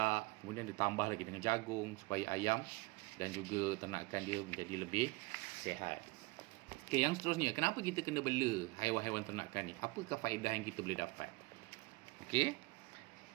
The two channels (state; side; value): quieter; left; 24.1 dB